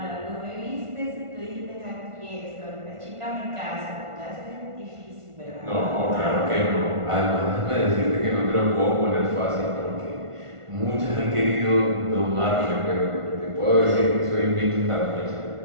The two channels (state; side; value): late; left; 1.5 ms